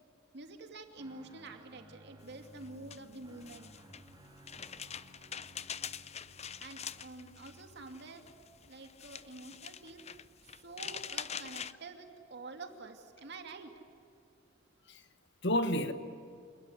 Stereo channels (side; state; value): both; normal; correlation 0.02